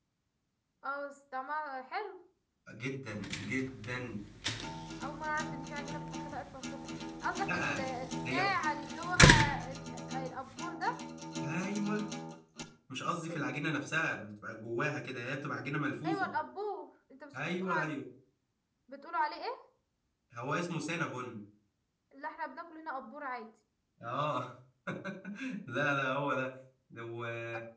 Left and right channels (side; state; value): both; identical; correlation 1.00